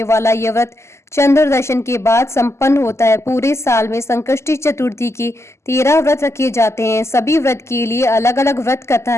वाला यह व्रत चंद्र दर्शन के बाद संपन्न होता है। पूरे साल में संकष्टी चतुर्थी के 13 व्रत रखे जाते हैं। सभी व्रत के लिए अलग अलग व्रत कथा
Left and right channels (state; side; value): late; right; 0.13 ms